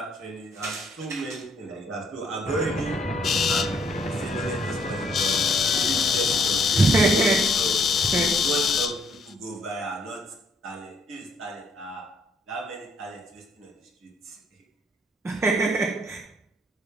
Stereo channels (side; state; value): both; normal; correlation 0.66